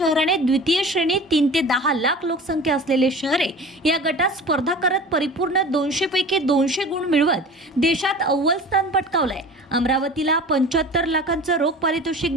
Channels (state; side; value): normal; both; correlation 0.39